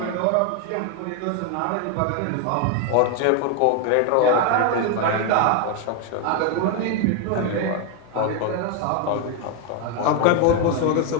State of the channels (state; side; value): different; both; correlation 0.01